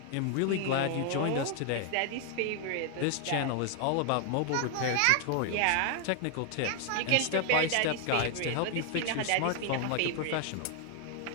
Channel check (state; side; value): different; both; correlation 0.00